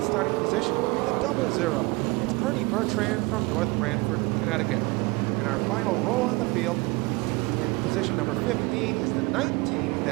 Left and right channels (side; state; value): left; quieter; 25.1 dB